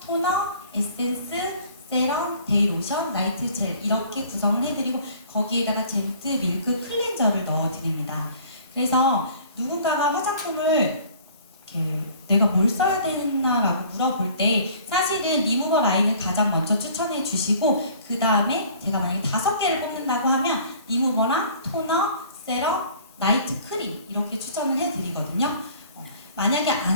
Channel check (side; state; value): both; inverted; correlation -0.51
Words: 토너, 에센스, 세럼, 데이로션, 나이트 젤 이렇게 구성을 해드리고 거기에다가 젠트 밀크 클렌저를 넣어드립니다. 그래서 누군가가 화장품을 내가 뭘 써야 되나라고 물어볼 때 사실은 리무버 라인을 가장 먼저 추천해 주시고 그 다음에 제가 만약에 5개를 뽑는다고 하면 리무버랑 토너, 세럼, 나이트 크림 이렇게 추천을 해드리거든요. 만약에